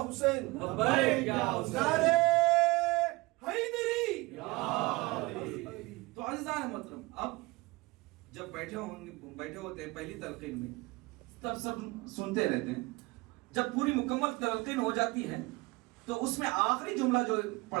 حسین, لبیک یا حسین, نعرے حیدری. تو عزیزان محترم, اب جب بیٹھے ہوتے ہیں پہلی تلقین میں تب سب سنتے رہتے ہیں. جب پوری مکمل تلقین ہو جاتی ہے تو اس میں آخری جملہ جو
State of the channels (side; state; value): left; quieter; 23.2 dB